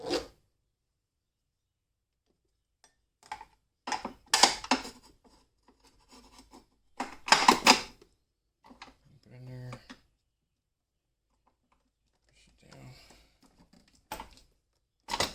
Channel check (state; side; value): identical; both; correlation 1.00